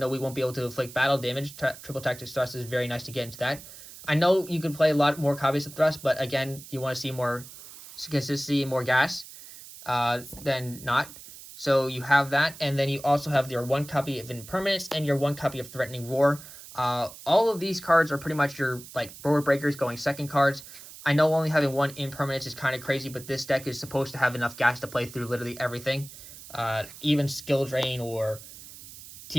though we won't be able to inflict battle damage. Triple Tactics Thrust is very nice to get into that. I know you can play a lot more copies of Thrust, but again, you want to see more consistency and more gas than not. So you have that, and then you also have your 1 copy of Impermanence and your 1 copy of Threatening Roar. All of these cards are pretty much your like board breakers going second cards. I know only having 1 Impermanence is kind of crazy, but this deck is supposed to have enough gas to play through literally everything. Even Skill Drain or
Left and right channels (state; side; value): noise; right; hiss, 16 dB below the sound